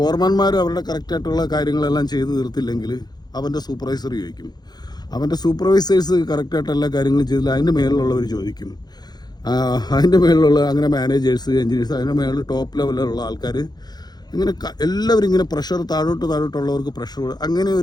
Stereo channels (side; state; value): right; late; 0.20 ms